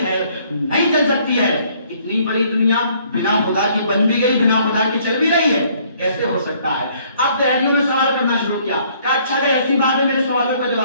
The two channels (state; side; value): inverted; both; correlation -0.62